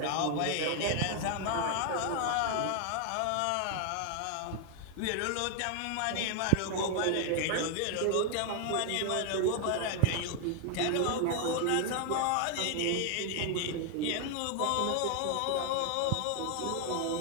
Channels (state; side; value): different; both; correlation 0.00